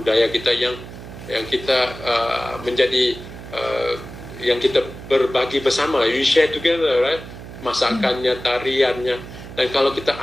kita yang kita menjadi yang kita berbagi bersama. You share together, right? Masakannya, tariannya. Dan kalau kita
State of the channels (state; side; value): noise; right; hum, 13 dB below the sound